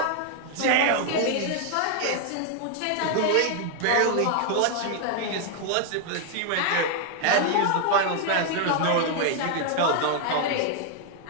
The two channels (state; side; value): different; both; correlation 0.00